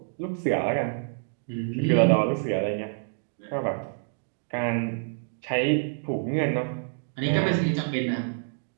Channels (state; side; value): silent; left; digital silence